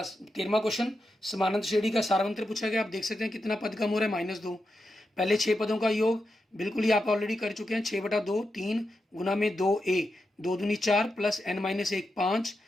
13वां क्वेश्चन समानांतर श्रेणी का सारवंत्र पूछा गया। आप देख सकते हैं कितना पद कम हो रहा है -2। पहले 6 पदों का योग बिल्कुल ही आप ऑलरेडी कर चुके हैं, 6/2 3 गुना में 2a 2 दूनी 4 प्लस n-1 5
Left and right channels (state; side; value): normal; both; correlation 0.87